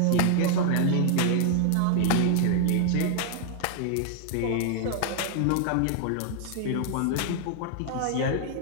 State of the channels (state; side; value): different; both; correlation 0.00